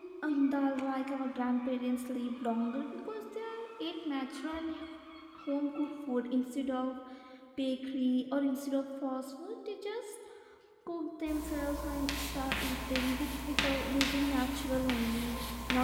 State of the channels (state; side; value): identical; both; correlation 1.00